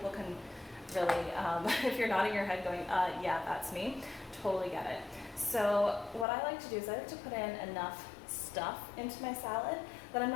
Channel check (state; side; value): drops out; right; at 6.2 s